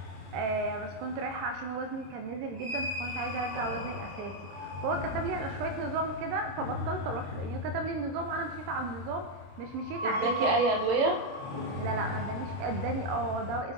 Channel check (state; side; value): late; left; 27 ms